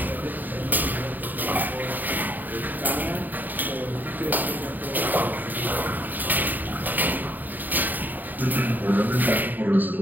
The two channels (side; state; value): left; late; 0.087 ms